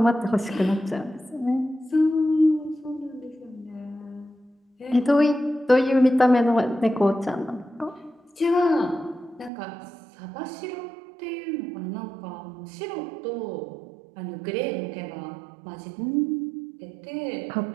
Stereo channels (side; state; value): left; drops out; at 9.5 s